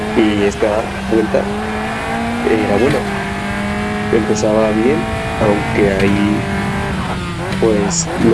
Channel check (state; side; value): identical; both; correlation 1.00